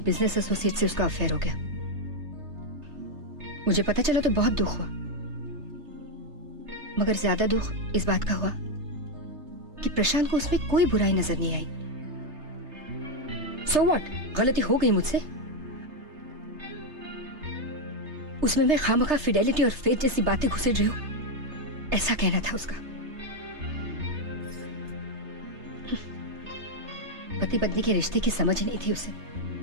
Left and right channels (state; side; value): late; left; 3.3 ms